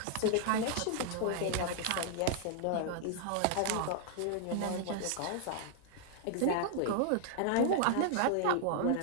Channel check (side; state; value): both; different; correlation -0.01